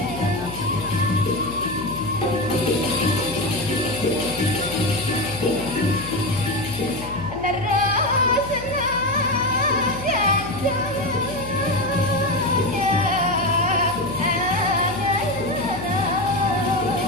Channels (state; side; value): noise; left; hum, 12 dB below the sound